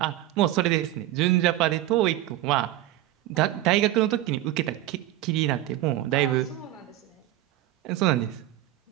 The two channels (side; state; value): left; quieter; 14.8 dB